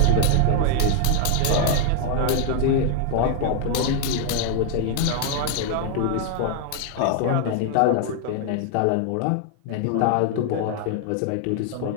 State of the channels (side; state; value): both; different; correlation 0.00